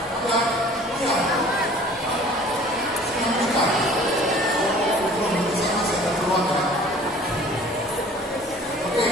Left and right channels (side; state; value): both; normal; correlation 0.49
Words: Ada? Iya. Siapa menikah? Belum, saya masih ada peluang ya. Oke.